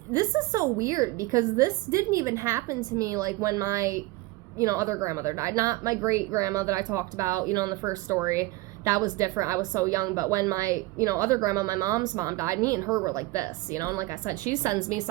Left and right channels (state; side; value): quieter; left; 20.2 dB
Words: is so weird because this didn't even happen to me like when my, you know, other grandmother died. Not my great grandma that I talked about, you know, in the first story. That was different. I was so young. But when my, you know, other grandma, my mom's mom died, me and her were like this, you know. And like I said, she sends me